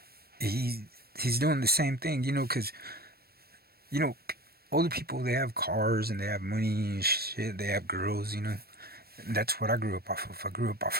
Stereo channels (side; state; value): left; late; 0.45 ms